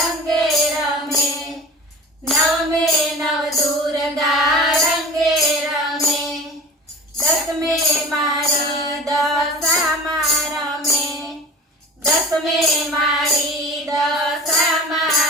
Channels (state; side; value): normal; both; correlation 0.39